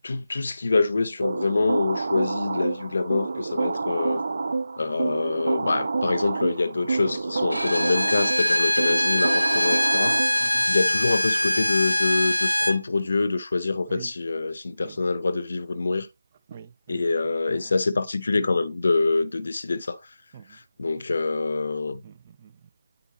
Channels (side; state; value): both; inverted; correlation -0.95